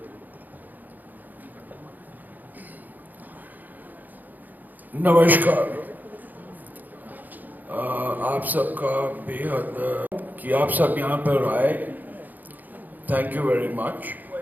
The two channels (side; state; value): left; late; 0.084 ms